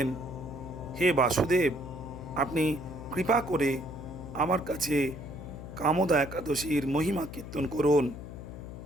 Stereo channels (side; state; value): left; noise; hum, 11 dB below the sound